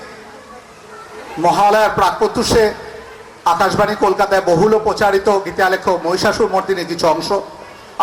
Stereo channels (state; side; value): identical; both; correlation 1.00